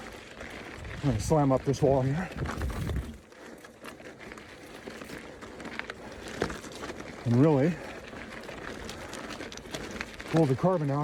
gonna slam up this wall here. and really pull the carbon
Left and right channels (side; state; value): both; identical; correlation 1.00